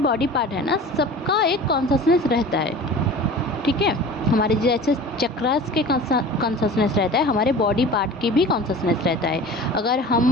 बॉडी पार्ट है ना, सबका एक कॉन्शसनेस रहता है। ठीक है, हमारे जैसे चक्रास के कॉन्शसनेस रहता है, हमारे बॉडी पार्ट की भी कॉन्शसनेस रहता है। अगर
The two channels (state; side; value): normal; both; correlation 0.39